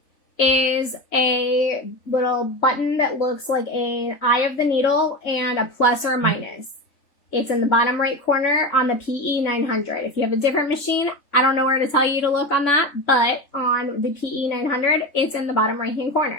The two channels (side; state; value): right; late; 3.5 ms